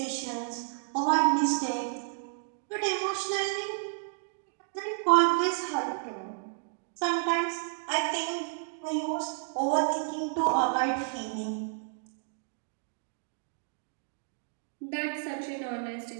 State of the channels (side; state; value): left; silent; digital silence